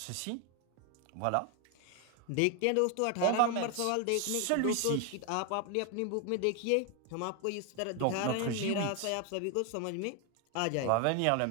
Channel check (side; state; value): both; different; correlation 0.01